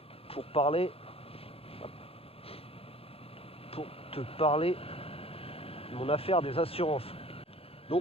pour te parler de mon affaire des assurances.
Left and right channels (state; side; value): late; right; 0.28 ms